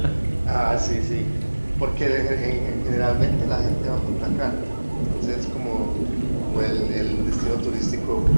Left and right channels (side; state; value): both; inverted; correlation -1.00